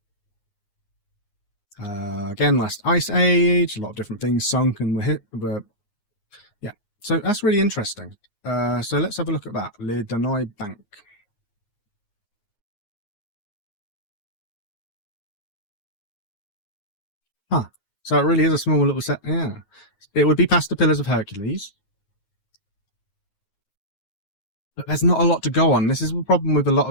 Again, last ice age, a lot of different things sunk and were yeah. So that's really interesting. So let's have a look at that. Le Danoy Bank. Huh. So it really is a small little set. Yeah. It would be past the Pillars of Hercules. But there's not a lot to go on. This is the problem with a lot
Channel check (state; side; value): late; right; 9.7 ms